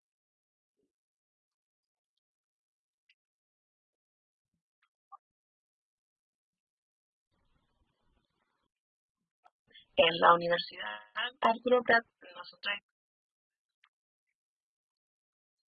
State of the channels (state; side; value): identical; both; correlation 1.00